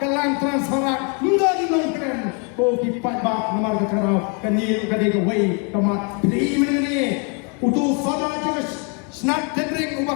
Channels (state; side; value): quieter; right; 36.5 dB